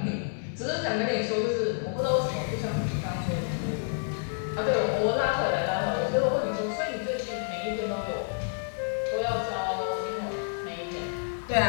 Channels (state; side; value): silent; right; digital silence